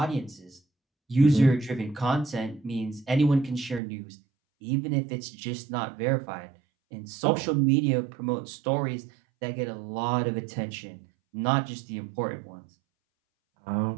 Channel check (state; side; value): drops out; left; at 3.8 s